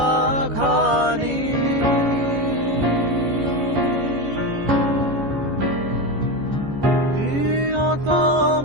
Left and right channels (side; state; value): left; late; 14 ms